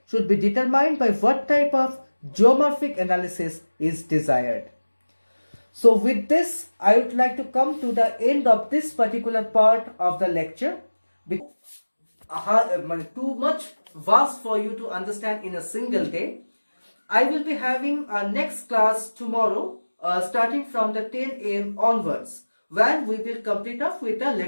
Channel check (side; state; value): both; inverted; correlation -1.00